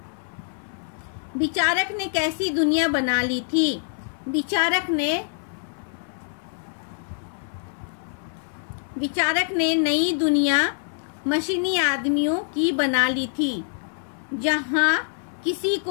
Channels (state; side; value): silent; right; 62 dB below the other